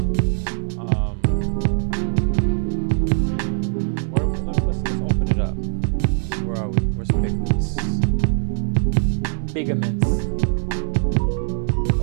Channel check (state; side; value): silent; left; digital silence